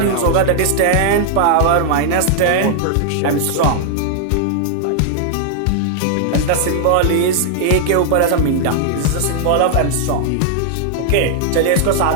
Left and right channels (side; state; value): both; different; correlation -0.01